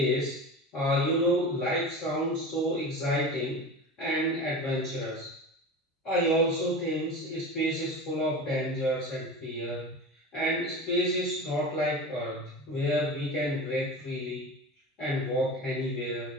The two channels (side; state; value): both; normal; correlation 0.30